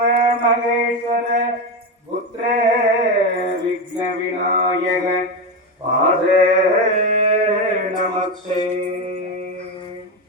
மகேஸ்வர புத்திர விக்ன விநாயக பாத நமஸ்தே.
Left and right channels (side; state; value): both; normal; correlation 0.14